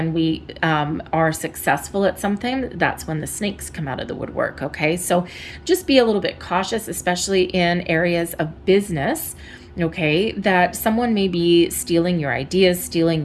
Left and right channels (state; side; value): identical; both; correlation 1.00